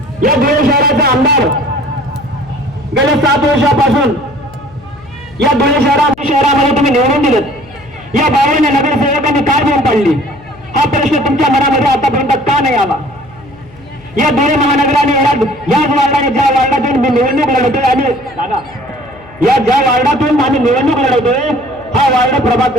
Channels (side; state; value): left; noise; hum, 24 dB below the sound